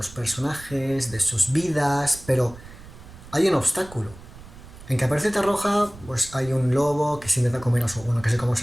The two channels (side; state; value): right; noise; rumble, 18 dB below the sound